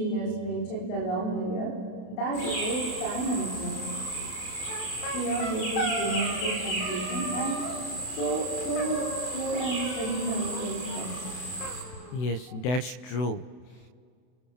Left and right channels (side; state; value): right; late; 32 ms